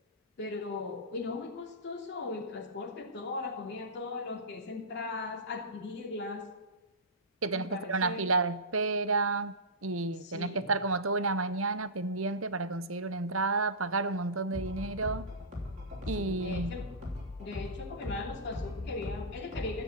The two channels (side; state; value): both; normal; correlation -0.18